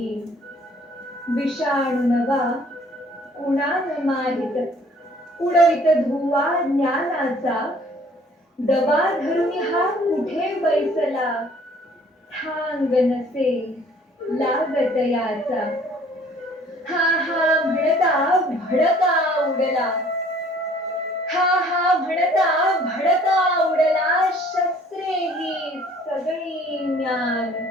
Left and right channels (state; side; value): normal; both; correlation 0.56